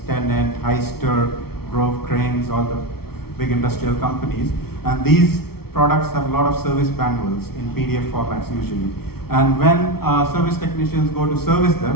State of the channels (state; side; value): late; right; 0.95 ms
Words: Tennant, Hyster, Grove Cranes, all the big industrial companies. And these products have a lot of service manuals in PDF formats usually. And when service technicians go to service